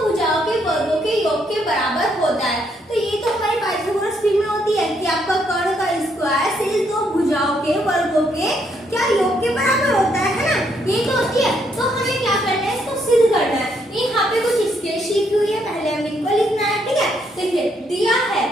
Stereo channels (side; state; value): both; normal; correlation 0.73